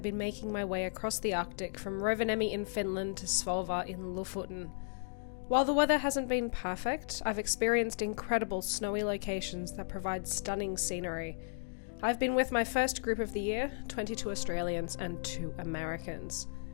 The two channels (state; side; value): silent; right; digital silence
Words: been making my way across the Arctic from Rovaniemi in Finland to Svolvaer in Lofoten. While the weather hasn't been perfect, I've experienced incredible snowy locations that provide stunning scenery. I've been with my first group of the year, 22 Australians and 2 Americans.